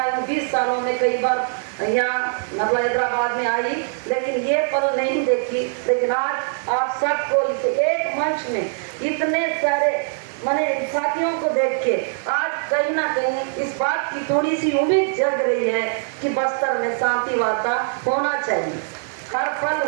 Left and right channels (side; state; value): left; silent; digital silence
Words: 20 सालों में कई बार यहाँ मतलब हैदराबाद में आई, लेकिन ये पल नहीं देखी। लेकिन आज आप सबको इस एक मंच में इतने सारे मैंने साथियों को देख के आज कहीं ना कहीं इस बात की थोड़ी सी उम्मीद जग रही है कि बस्तर में शांति वार्ता होना चाहिए, हर पल